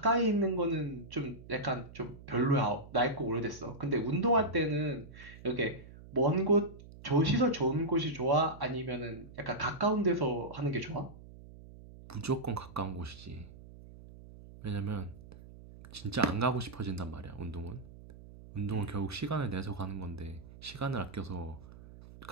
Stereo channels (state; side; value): noise; right; hum, 18 dB below the sound